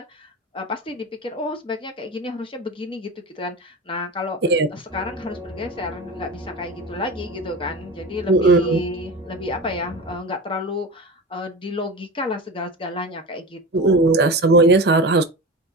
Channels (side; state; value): both; normal; correlation 0.28